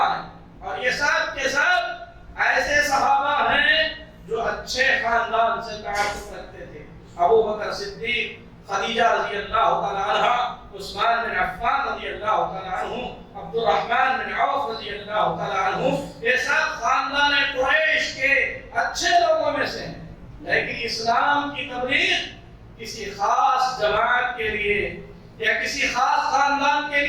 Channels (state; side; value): identical; both; correlation 1.00